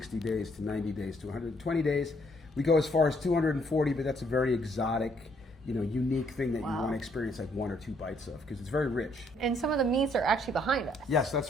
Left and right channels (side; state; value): both; normal; correlation 0.68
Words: days to 90 days to 120 days. We go as far as 240, but that's a very exotic, unique thing that you want to experience like one or two bites of, because it's very rich. And some of the meats are actually behind us. Yes,